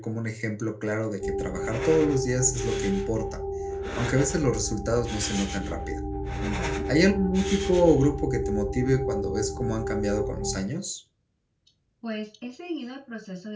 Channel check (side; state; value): both; identical; correlation 1.00